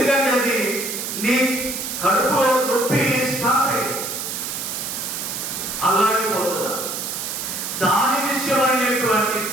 అది నీ కడుపులో నొప్పి స్టార్ట్ అయింది, అల్లాడిపోతున్నా. దాని విషయమైనటువంటి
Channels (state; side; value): noise; right; hiss, 5 dB below the sound